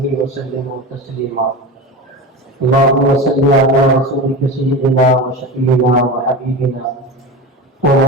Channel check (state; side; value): normal; both; correlation 0.26